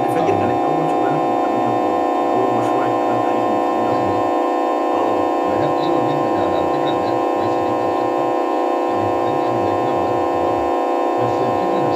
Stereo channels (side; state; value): both; identical; correlation 1.00